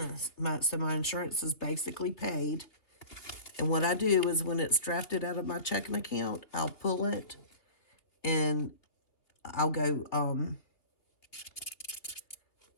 So my insurance is basically paid. And what I do is when it's drafted out of my checking account, I'll pull it and I'll go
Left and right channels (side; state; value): right; late; 2.7 ms